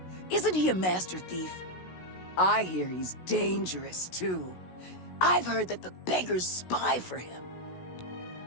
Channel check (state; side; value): late; right; 16 ms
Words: Isn't he a master thief? I hear he's dangerous, too. I've heard that the beggars spy for him.